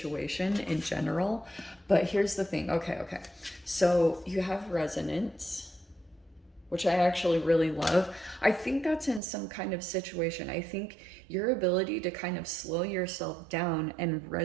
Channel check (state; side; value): drops out; left; at 9.2 s